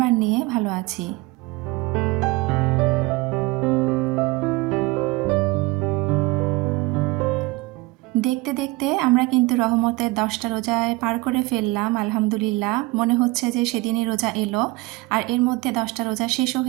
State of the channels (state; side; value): quieter; left; 22.3 dB